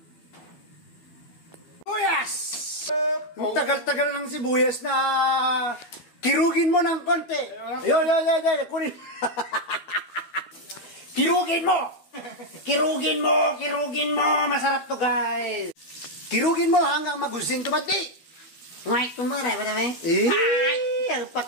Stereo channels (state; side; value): late; right; 12 ms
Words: Sibuyas! Ang tagal-tagal ng sibuyas na kirugin mo ng konti. Yo, kunin. Kirugin mo! Kirugin mo! Masarap to guys! Kirugin mo hanggang magusing tumati. Ngay, kumara ba naman? Ay, ang